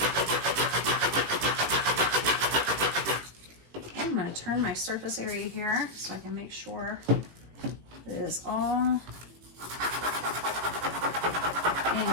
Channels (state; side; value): late; left; 18 ms